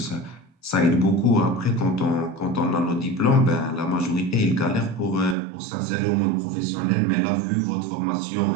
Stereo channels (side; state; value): left; drops out; at 5.4 s